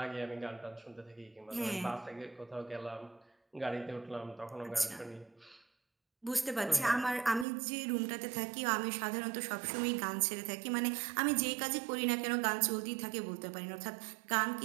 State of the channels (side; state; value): left; drops out; at 7.5 s